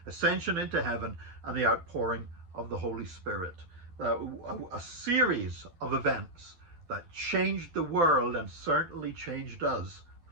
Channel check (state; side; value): late; left; 12 ms